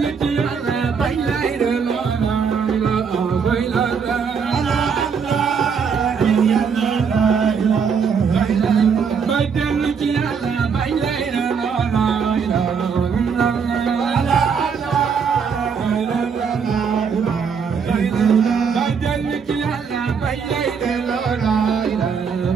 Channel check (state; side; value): quieter; left; 6.2 dB